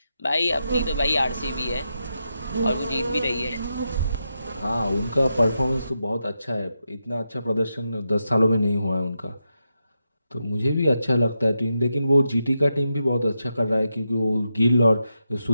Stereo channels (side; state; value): both; inverted; correlation -0.86